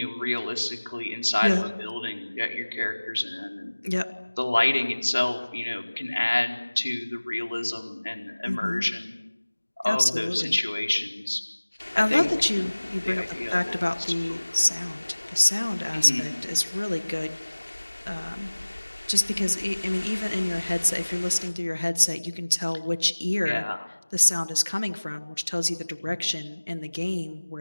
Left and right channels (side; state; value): both; inverted; correlation -1.00